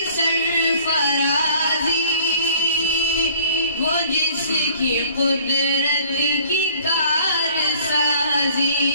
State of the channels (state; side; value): inverted; both; correlation -0.53